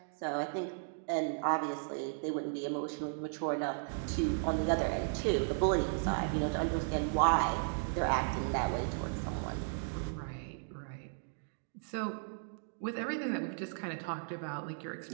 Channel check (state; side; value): silent; left; digital silence